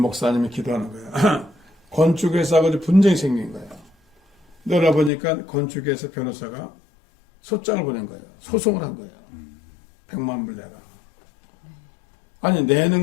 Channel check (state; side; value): drops out; right; at 5.1 s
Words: 기도하는 거예요. 건축회사하고 분쟁이 생긴 거예요. 그러다 보니까 건축회사 변호사가 소장을 보낸 거예요. 소송을 한 거예요. 100만 불 내라. 아니, 내는